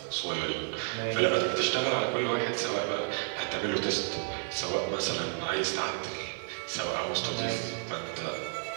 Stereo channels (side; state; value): left; silent; 57 dB below the other